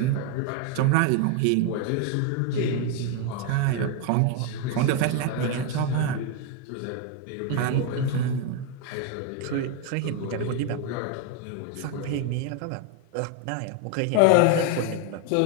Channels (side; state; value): both; different; correlation 0.01